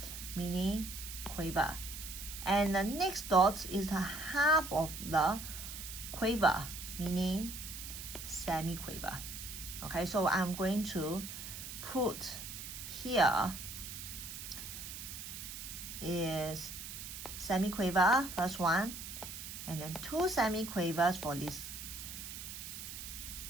meaning quaver. And the next dot is the half of the quaver, meaning semi-quaver. Okay, so I'm going to put here is semi-quaver, first one, and then 2 semi-quavers for this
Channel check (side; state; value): right; noise; hiss, 9 dB below the sound